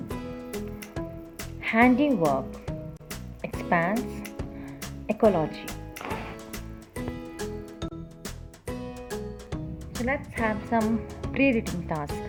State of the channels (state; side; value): identical; both; correlation 1.00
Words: handiwork, expanse, ecology. So let's have some pre-reading task.